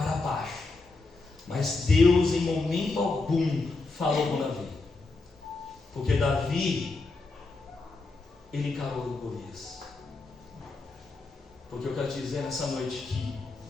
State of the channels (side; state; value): right; quieter; 3.6 dB